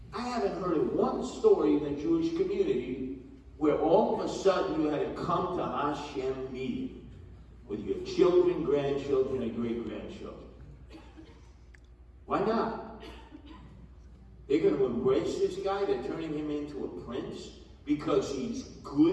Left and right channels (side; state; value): both; identical; correlation 1.00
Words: I haven't heard of one story in the Jewish community where all of a sudden you had to come to Hashem meeting with your children, grandchildren, and great-grandchildren. Why not? They're going to embrace this guy? They're turning him into a prince because he's